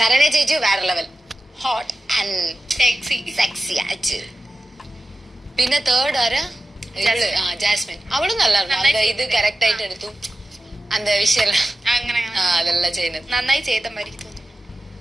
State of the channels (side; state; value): both; normal; correlation 0.94